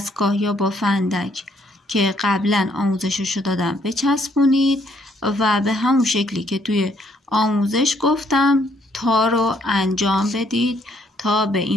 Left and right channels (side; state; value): both; normal; correlation 0.69